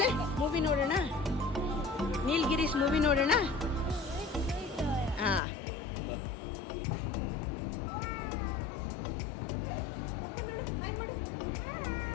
ಮೂವಿ ನೋಡೋಣ, ನೀಲ್ಗಿರೀಸ್ ಮೂವಿ ನೋಡೋಣ. ಹಾಂ,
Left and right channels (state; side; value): drops out; right; at 5.4 s